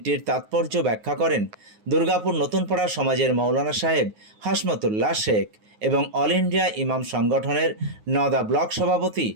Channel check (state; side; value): late; left; 9.5 ms